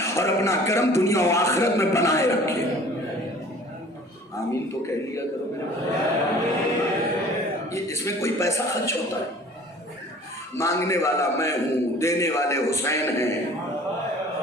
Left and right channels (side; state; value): both; normal; correlation 0.48